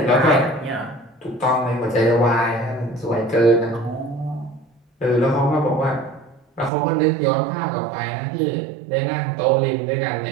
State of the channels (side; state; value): left; drops out; at 6.7 s